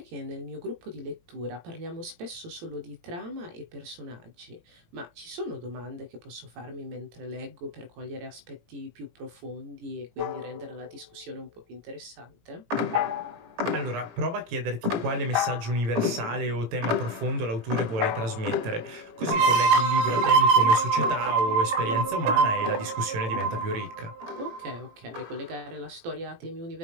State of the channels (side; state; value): left; late; 18 ms